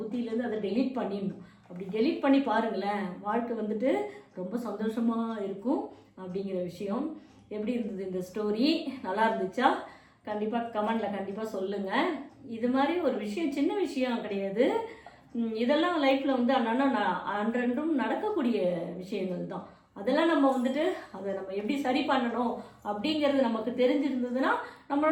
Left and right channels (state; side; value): identical; both; correlation 1.00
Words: அதை டெலீட் பண்ணிடணும். அப்படி டெலீட் பண்ணி பாருங்களேன், வாழ்க்கை ரொம்ப சந்தோஷமாக இருக்கும் அப்படிங்கிற விஷயம். எப்படி இருந்தது இந்த ஸ்டோரி? நல்லா இருந்துச்சா? கண்டிப்பாக கமெண்டில் கண்டிப்பாக சொல்லுங்கள். இது மாதிரி ஒரு விஷயம் சின்ன விஷயம் கிடையாது, இதெல்லாம் லைஃப்பில் அன்றன்றும் நடக்கக்கூடிய விஷயங்கள் தான். அதெல்லாம் நம்ம அதை நம்ம எப்படி சரி பண்ணணும் அப்படிங்கிறது நமக்கு தெரிஞ்சிருந்ததுன்னா